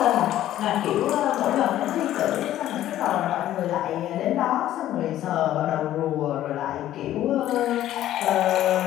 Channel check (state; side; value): quieter; right; 12.9 dB